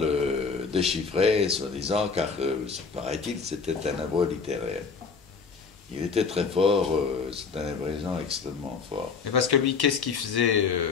déchiffrer, soi-disant, car, paraît-il, c'était un hébreu littéraire. Il était très fort, c'est un hébraïsant extrêmement fort. Et parce que lui, qu'est-ce qu'il faisait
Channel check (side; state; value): right; quieter; 5.2 dB